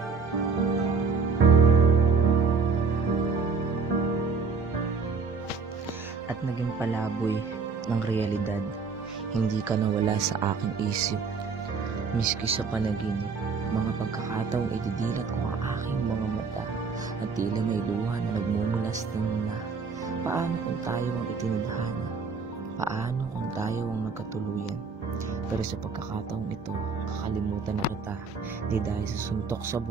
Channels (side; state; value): left; quieter; 5.0 dB